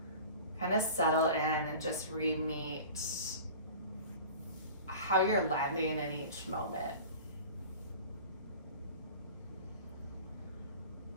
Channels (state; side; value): inverted; both; correlation -0.39